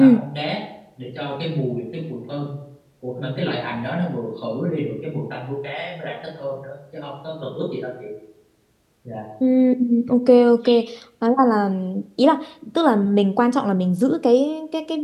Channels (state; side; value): identical; both; correlation 1.00